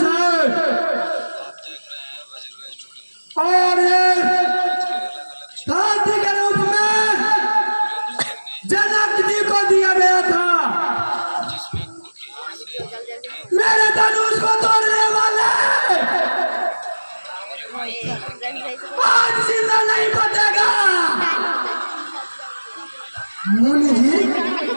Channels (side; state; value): both; inverted; correlation -1.00